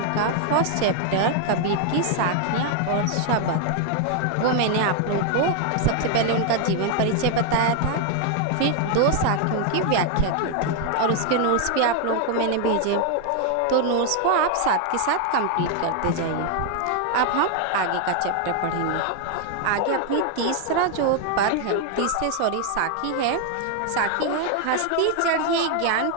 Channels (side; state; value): both; different; correlation 0.00